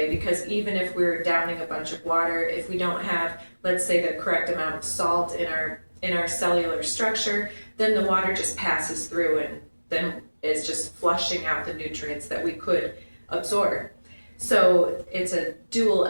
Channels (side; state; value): both; inverted; correlation -1.00